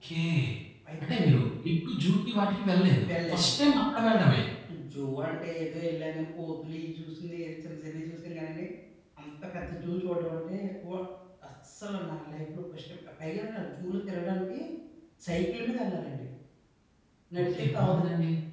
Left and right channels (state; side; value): identical; both; correlation 1.00